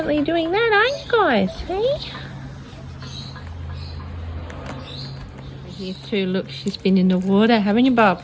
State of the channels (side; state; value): both; identical; correlation 1.00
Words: doing that, aren't you guys? Hey? Here too, look, she's been in the water, haven't you, Bob?